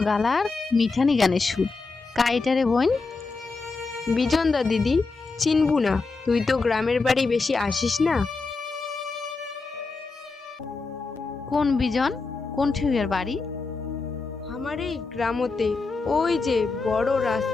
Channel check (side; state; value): right; quieter; 4.0 dB